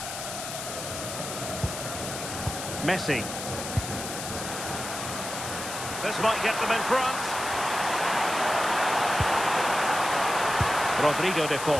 Messi. This might get them in front. Rodrigo de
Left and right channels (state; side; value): noise; left; hiss, 7 dB below the sound